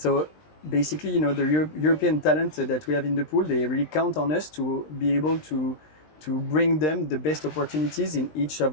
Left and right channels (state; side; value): late; right; 20 ms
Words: basically, the European talent that we have in the pool, they really count on us to be able to bring them the best opportunities in each